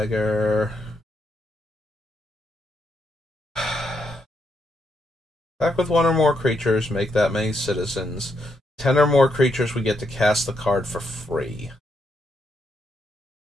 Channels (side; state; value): both; normal; correlation 0.79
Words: Back with one or more creatures, make that many citizens. 10 or more creatures, we get to cast the card for free.